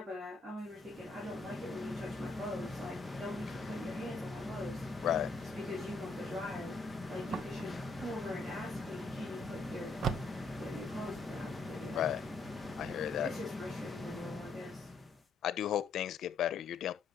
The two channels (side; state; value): right; quieter; 3.6 dB